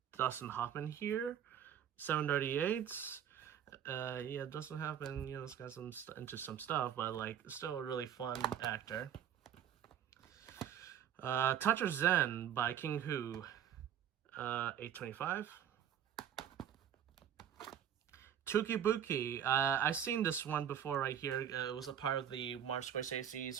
Dustin Hoffman here. 738. Yeah, Dustin Hoffman, you know, it's got into some stuff, but like still a really fun actor. Toucher Zen by King Hu. 825. Tukibuki. I've seen this one before right here. It was a part of the Martin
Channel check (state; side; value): quieter; left; 9.6 dB